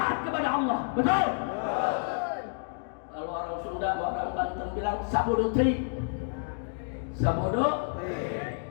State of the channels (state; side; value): silent; right; digital silence